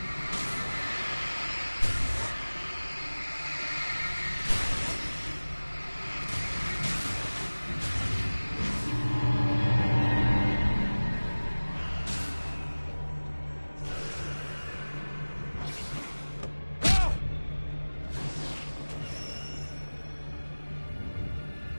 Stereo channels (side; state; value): both; inverted; correlation -1.00